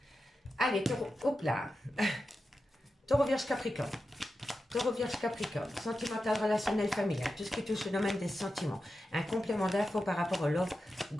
Allez, taureau, hop là. Taureau, vierge, capricorne. Taureau, vierge, capricorne, sentimental, relationnel, familial, tout ce qui touche le domaine des sentiments. Un complément d'infos par rapport au Love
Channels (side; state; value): both; normal; correlation 0.91